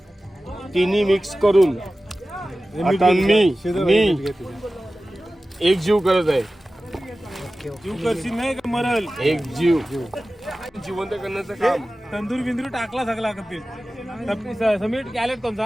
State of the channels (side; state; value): both; normal; correlation 0.96